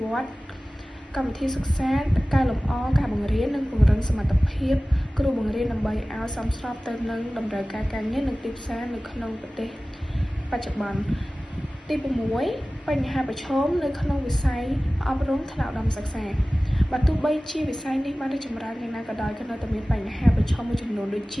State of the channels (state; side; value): normal; both; correlation 0.97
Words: វឌ្ឍ កម្មវិធីសិក្សាកែលម្អការបង្រៀននិងពង្រឹងសមត្ថភាពគ្រូបង្រៀនដើម្បីឲ្យសមស្របទៅនឹងតម្រូវការការងារនិងទីផ្សារនៅក្នុងប្រទេសបច្ចុប្បន្ន ទី6 បញ្ហាប្រឈមនៅក្នុងវិស័យអប់រំថ្នាក់ឧត្តមសិក្សាបើទោះបីជាវិស័យនេះបានរីកចម្រើនយ៉ាងណាក៏ដោយក៏នៅតែមានបញ្ហាប្រឈមមួយចំនួនដូចជ